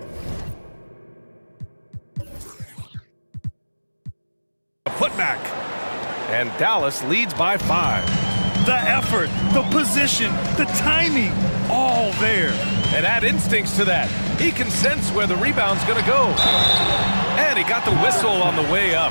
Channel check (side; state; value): both; inverted; correlation -1.00